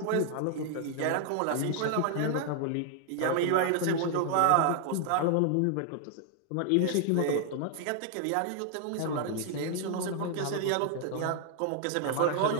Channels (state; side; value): different; both; correlation 0.00